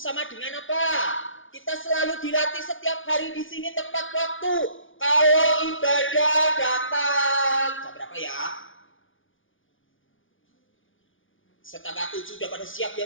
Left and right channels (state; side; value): late; right; 0.57 ms